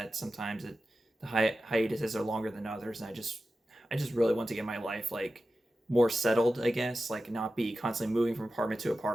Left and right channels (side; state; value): both; normal; correlation 0.93